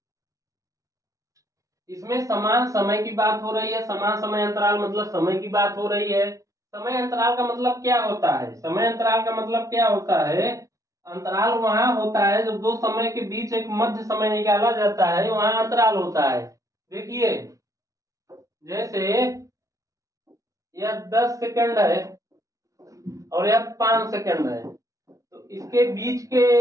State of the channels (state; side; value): late; left; 0.16 ms